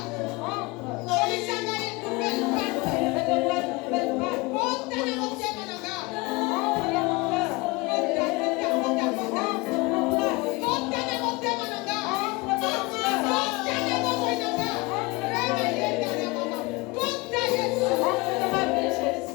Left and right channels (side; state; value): right; quieter; 24.7 dB